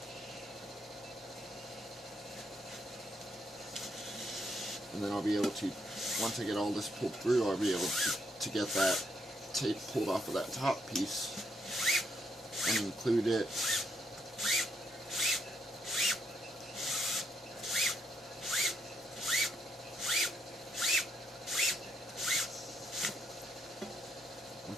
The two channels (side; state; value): both; normal; correlation 0.76